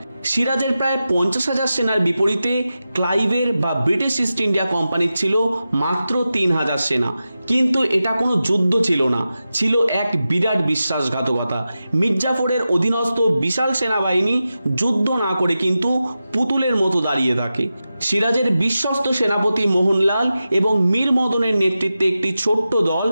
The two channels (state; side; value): inverted; both; correlation -0.92